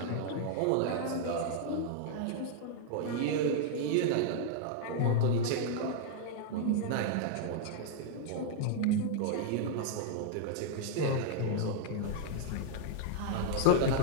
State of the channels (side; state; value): both; different; correlation -0.01